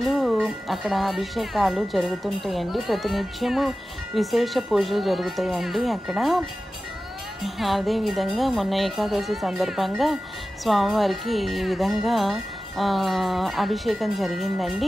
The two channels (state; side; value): normal; both; correlation 0.95